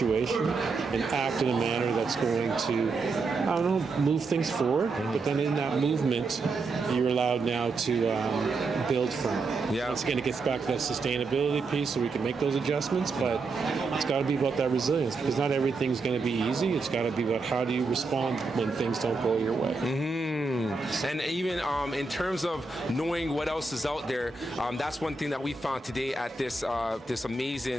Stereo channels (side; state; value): left; quieter; 3.9 dB